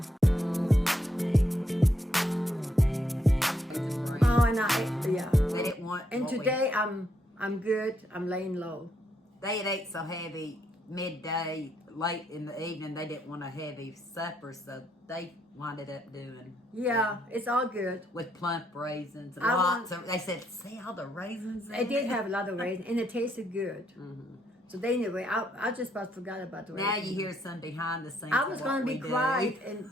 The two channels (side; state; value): both; normal; correlation 0.75